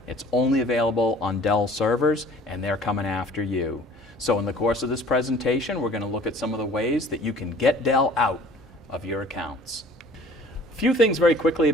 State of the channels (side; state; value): both; normal; correlation 0.50